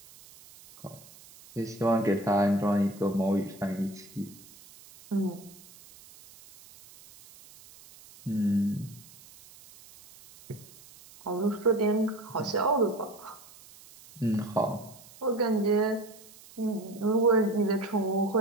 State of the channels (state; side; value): noise; right; hiss, 22 dB below the sound